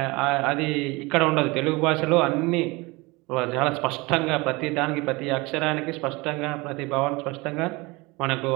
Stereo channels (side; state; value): left; quieter; 24.4 dB